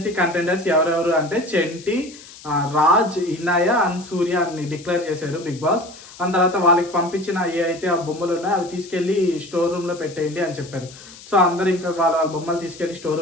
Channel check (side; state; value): left; noise; hiss, 19 dB below the sound